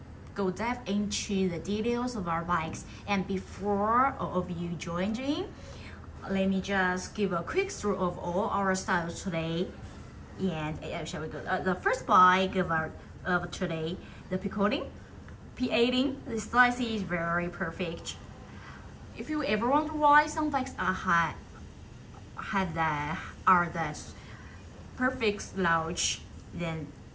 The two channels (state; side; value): identical; both; correlation 1.00